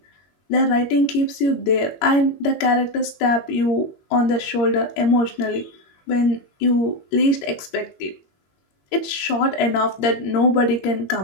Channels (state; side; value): late; right; 22 ms